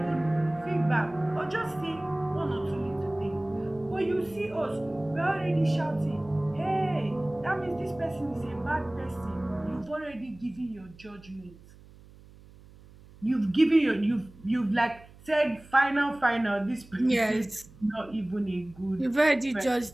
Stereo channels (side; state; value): right; noise; hum, 22 dB below the sound